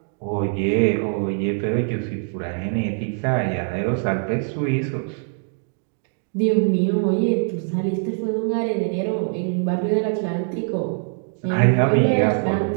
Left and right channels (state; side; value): silent; left; 64 dB below the other